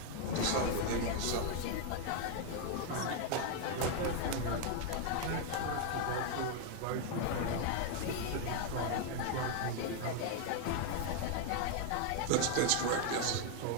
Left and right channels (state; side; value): different; both; correlation 0.00